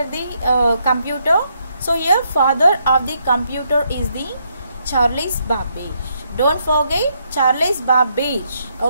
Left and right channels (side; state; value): both; inverted; correlation -0.76